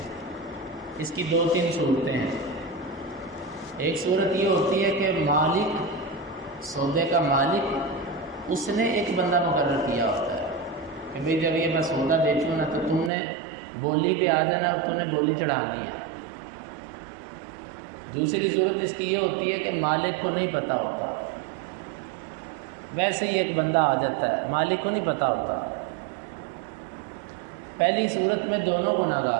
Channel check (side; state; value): left; drops out; at 13.1 s